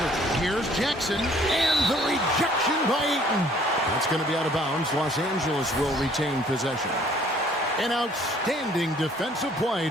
Here's Jackson. And the rejection by Ayton. That's going to be out of bounds. Los Angeles will retain possession. An outstanding defensive play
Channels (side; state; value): both; normal; correlation 0.58